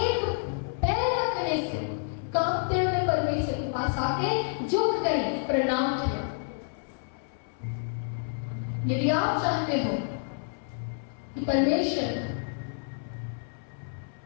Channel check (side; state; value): right; silent; 58 dB below the other